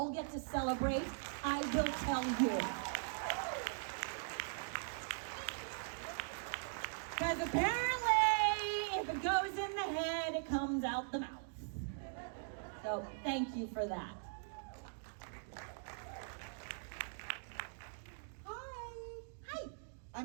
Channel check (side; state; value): left; silent; digital silence